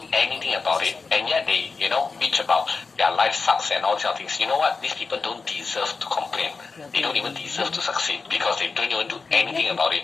anything about it, and yet they, bitch about their life sucks and all these other things. You know what? These people don't deserve to complain. They don't even deserve to succeed because they don't even do anything about it.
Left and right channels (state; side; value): quieter; right; 4.4 dB